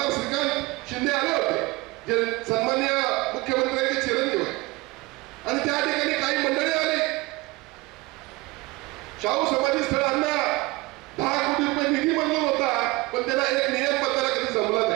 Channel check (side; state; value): left; quieter; 22.4 dB